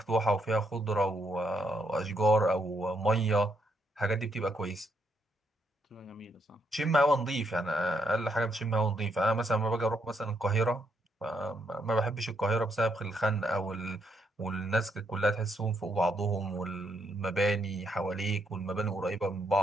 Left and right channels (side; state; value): both; normal; correlation 0.76